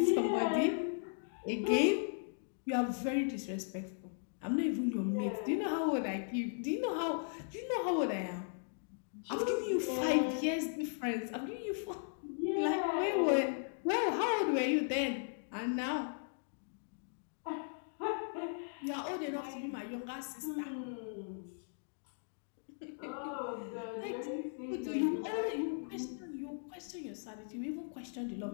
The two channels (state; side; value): silent; right; digital silence